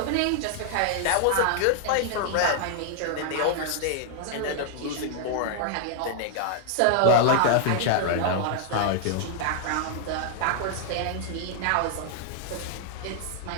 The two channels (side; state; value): both; different; correlation 0.00